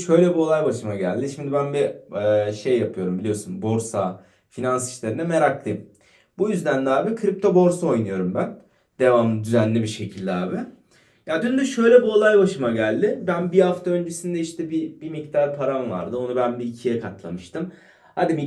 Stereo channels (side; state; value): both; identical; correlation 1.00